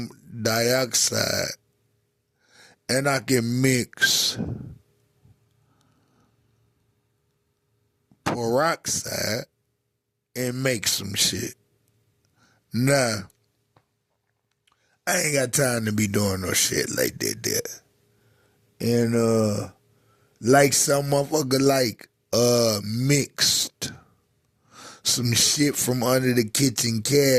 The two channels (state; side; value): identical; both; correlation 1.00